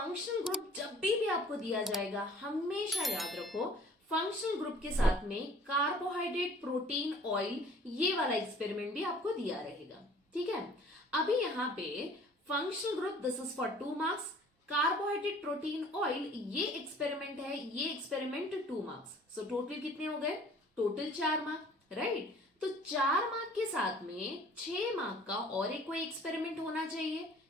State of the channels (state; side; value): normal; both; correlation 0.52